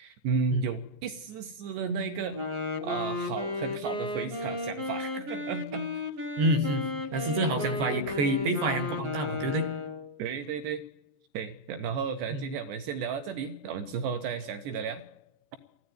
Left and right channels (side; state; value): left; late; 14 ms